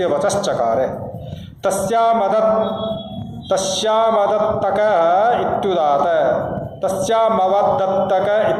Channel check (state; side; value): identical; both; correlation 1.00